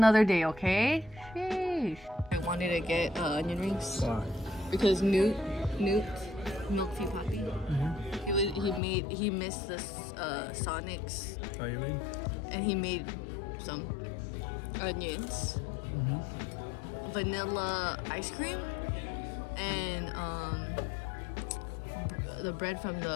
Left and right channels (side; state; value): right; drops out; at 8.8 s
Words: day, okay? Sheesh. I wanted to get onion rings Why? because Newt, Milk Tea Poppy, he missed the Sonics, Are you in? and he made some onions, vanilla ice cream, and the bread from